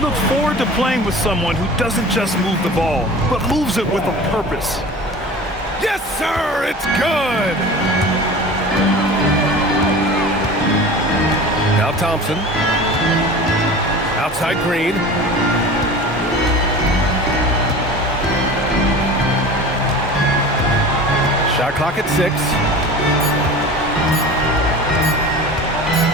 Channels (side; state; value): both; normal; correlation 0.37